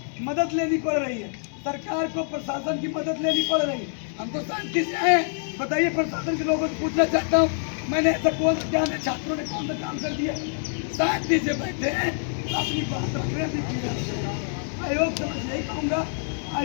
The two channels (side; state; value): right; silent; 61 dB below the other